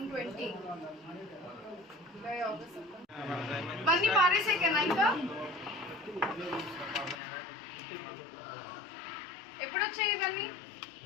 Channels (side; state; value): right; drops out; at 7.2 s